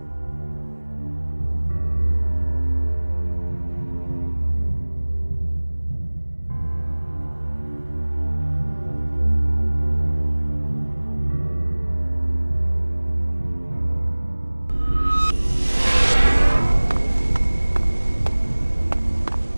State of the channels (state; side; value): inverted; both; correlation -1.00